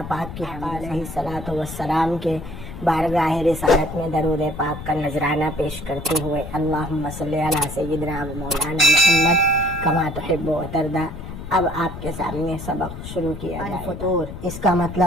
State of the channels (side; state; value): left; noise; rumble, 10 dB below the sound